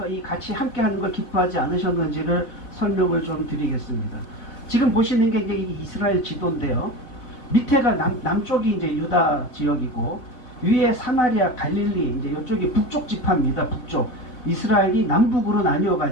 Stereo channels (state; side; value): late; right; 4.0 ms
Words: 이 같이 함께 하는 걸 기뻐하지 않으셨는지를 설명을 좀 드리겠습니다. 지금 보시는 게 이제 이스라엘 지도인데요. 밑에가 남쪽이 이제 유다 지역이고 위에 사마리아, 갈릴리, 이제 이쪽이 북쪽 지파입니다. 북쪽. 이스라엘이 남북으로